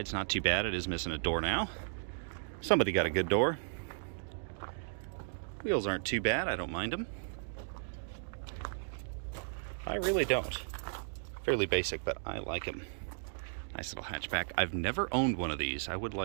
not too bad. It is missing a door now. Somebody got a good door. Wheels aren't too bad. I don't mind them. I really don't. Fairly basic, but I like them. Nice little hatchback. I've never owned one of these. I would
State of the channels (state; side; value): silent; left; digital silence